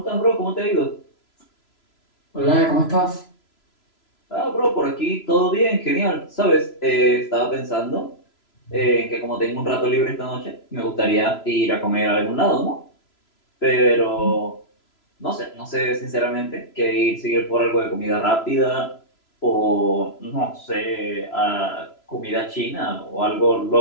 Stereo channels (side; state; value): right; late; 3.0 ms